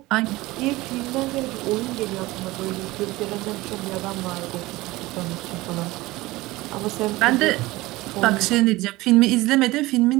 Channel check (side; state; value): left; quieter; 19.6 dB